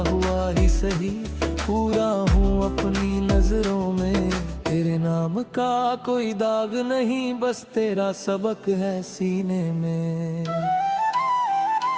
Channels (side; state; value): both; identical; correlation 1.00